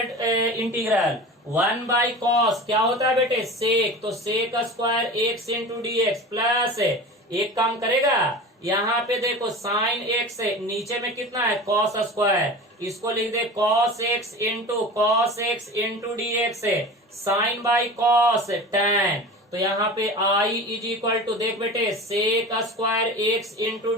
इंटीग्रल 1/cos क्या होता है बेटे सेक, तो sec square x into dx plus एक काम करेगा, यहाँ पे देखो साइन एक्स है, नीचे में कितना है कॉस स्क्वायर, इसको लिख दे कॉस एक्स इंटू dx है, साइन बाई कॉस टैन, तो यहाँ पे आई इज इक्वल टू देख बेटे sec square x into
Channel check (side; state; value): both; normal; correlation 0.34